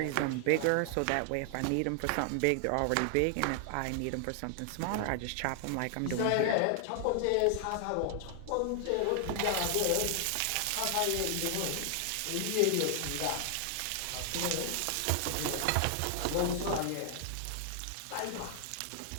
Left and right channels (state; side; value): different; both; correlation 0.00